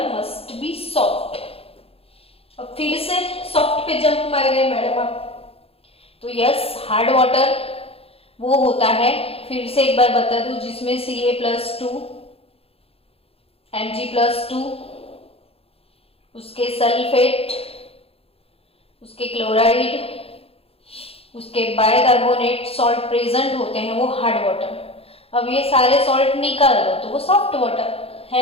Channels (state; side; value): late; right; 0.28 ms